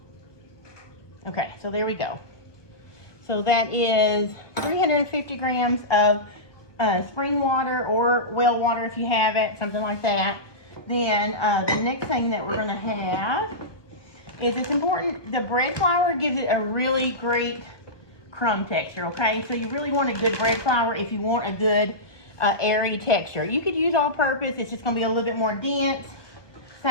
Okay, so there we go. So that is 350 grams of spring water or well water if you have it, something like that. Then the next thing that we're going to have is, it's important, the bread flour gives it a really great crumb texture, okay? So you really want a good bread flour if you want a good airy texture. You could use all-purpose. It's just going to be a little bit more dense.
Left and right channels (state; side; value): late; right; 1.2 ms